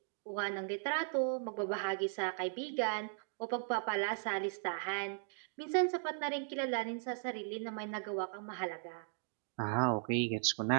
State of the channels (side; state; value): left; silent; digital silence